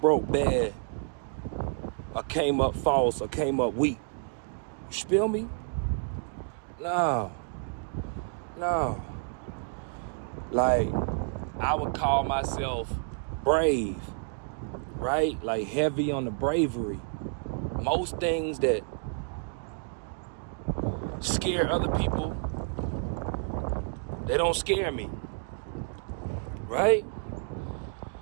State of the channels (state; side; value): silent; left; 58 dB below the other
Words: bad or came up false or came up weak. You feel me? No. Like, I would call myself brave, right? Like heavy on the bravery. Most things that scare other people, They don't scare me, right?